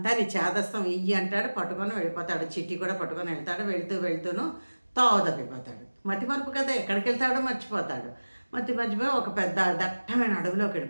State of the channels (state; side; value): inverted; both; correlation -1.00